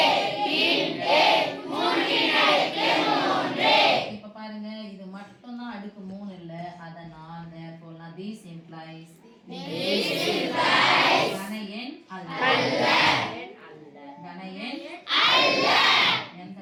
இப்ப பாருங்க இது மட்டும் தான் அடுக்கு 3 இல்ல. அதனால therefore this implies கன எண் அல்ல. கன எண் அல்ல. எந்த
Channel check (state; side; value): identical; both; correlation 1.00